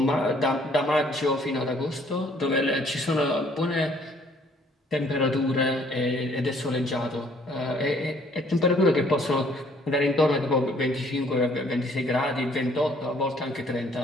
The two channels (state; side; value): normal; both; correlation 0.61